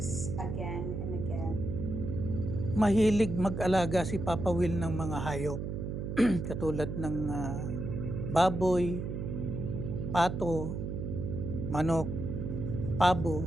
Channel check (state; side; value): noise; right; hum, 4 dB below the sound